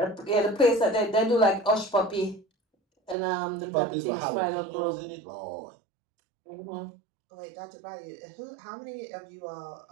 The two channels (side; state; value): left; drops out; at 3.2 s